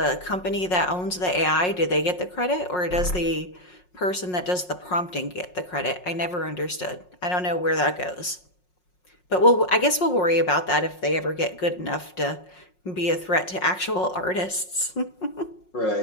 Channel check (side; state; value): right; late; 5.5 ms